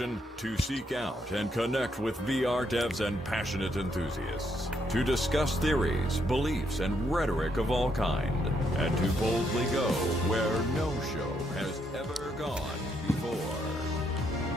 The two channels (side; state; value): both; normal; correlation 0.75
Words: To seek out and connect with VR devs and passionate enthusiasts. To discuss theories, beliefs, and rhetoric of all kind. And to boldly go where no show has ever gone before.